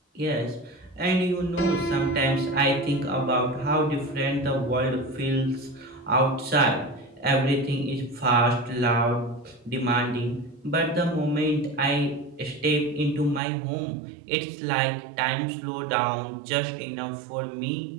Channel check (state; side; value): drops out; left; at 13.4 s